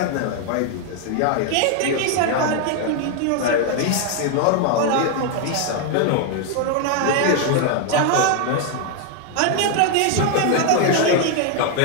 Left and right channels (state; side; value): different; both; correlation 0.01